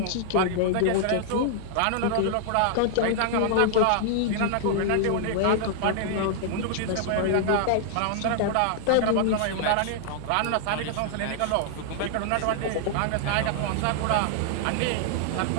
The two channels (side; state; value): both; different; correlation -0.01